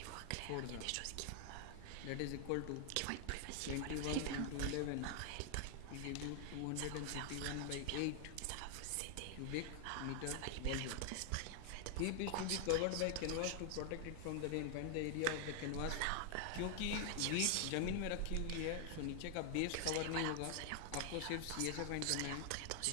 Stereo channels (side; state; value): both; different; correlation 0.00